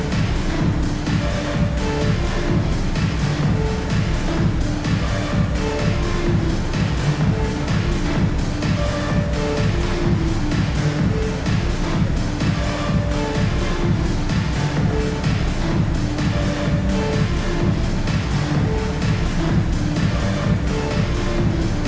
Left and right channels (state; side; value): identical; both; correlation 1.00